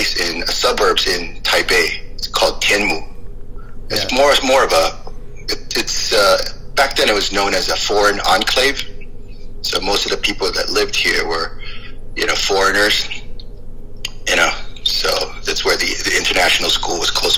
in suburbs in Taipei. It's called Tianmu. It's more of it's back then it was known as a foreign enclave. So most of the people that lived here were, foreigners. So that's where the international school was close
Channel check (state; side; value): identical; both; correlation 1.00